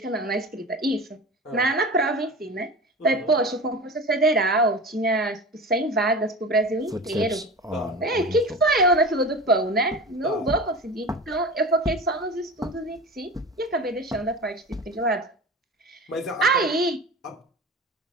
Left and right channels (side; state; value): both; normal; correlation 0.33